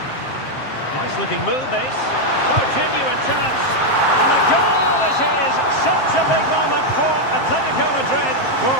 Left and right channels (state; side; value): late; right; 7.6 ms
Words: Nice looking move, this. Oh, genuine chance. And the goal is his. Such a big moment for Atletico Madrid.